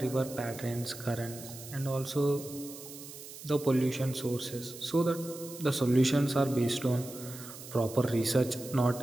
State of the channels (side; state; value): right; noise; hiss, 14 dB below the sound